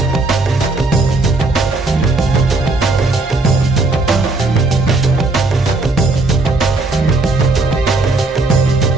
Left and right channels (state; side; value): quieter; left; 3.3 dB